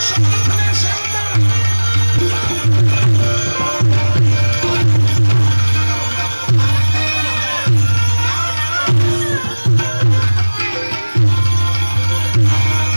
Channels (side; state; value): both; inverted; correlation -1.00